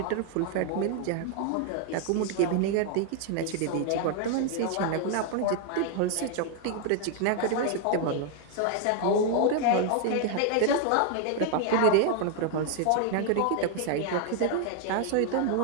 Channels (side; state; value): both; different; correlation 0.00